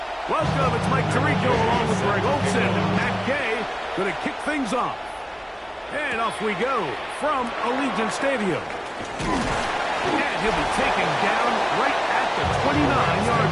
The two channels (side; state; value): both; identical; correlation 1.00